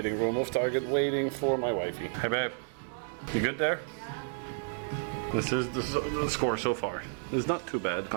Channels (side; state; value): left; silent; digital silence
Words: room of Target waiting for my wifey. Hey babe, you good there? This is the score so far. It's not too bad.